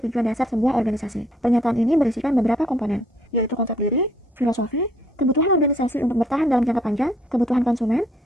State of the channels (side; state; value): both; normal; correlation 0.65